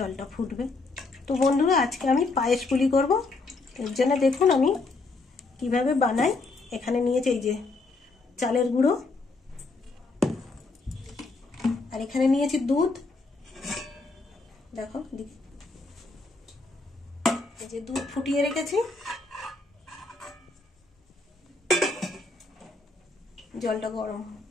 ফুটবে। তো বন্ধুরা, আজকে আমি পায়েস পুলি করব। এর জন্য দেখুন আমি কিভাবে বানাই। এখানে নিয়েছি এই যে চালের গুঁড়ো, আর এখানে নিয়েছি দুধ। দেখো দিদি, এই যে দুধ ফুটিয়ে রেখেছি। জলটা গরম,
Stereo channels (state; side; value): quieter; right; 3.6 dB